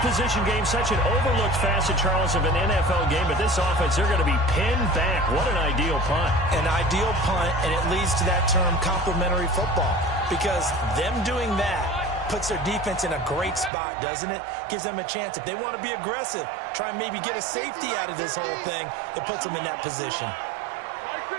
position game, such an overlooked facet, Charles, of an NFL game. But this offense, they're going to be pinned back. What an ideal punt. An ideal punt, and it leads to that term complementary football. Because them doing that puts their defense in a great spot, doesn't it? Gives them a chance. If they want to be aggressive, try and maybe get a safety out of this whole thing, it puts them in that position.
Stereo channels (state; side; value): drops out; left; at 13.7 s